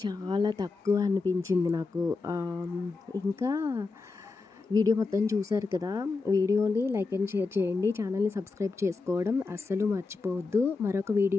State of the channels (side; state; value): right; quieter; 4.1 dB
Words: చాలా తక్కువ అనిపించింది నాకు. ఇంకా వీడియో మొత్తం చూశారు కదా, వీడియోని లైక్ అండ్ షేర్ చేయండి, ఛానల్ని సబ్స్క్రైబ్ చేసుకోవడం అస్సలు మర్చిపోవద్దు. మరొక